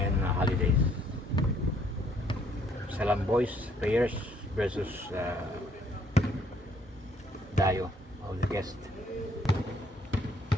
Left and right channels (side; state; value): both; normal; correlation 0.65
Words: holidays. Salam boys players versus Dayo of the guest.